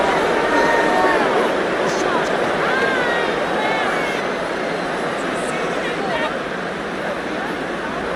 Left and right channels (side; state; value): both; identical; correlation 1.00